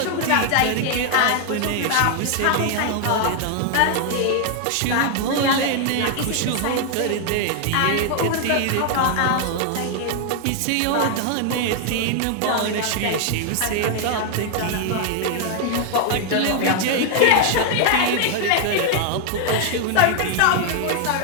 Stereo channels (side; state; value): both; different; correlation 0.00